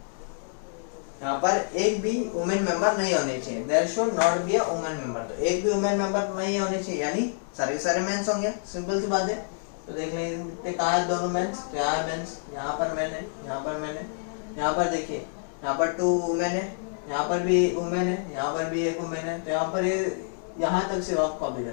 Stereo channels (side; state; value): right; silent; digital silence